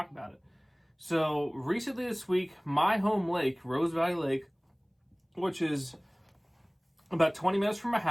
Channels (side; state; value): both; identical; correlation 1.00